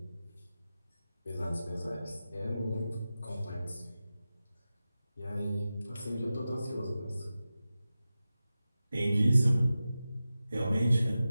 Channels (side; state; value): both; inverted; correlation -0.94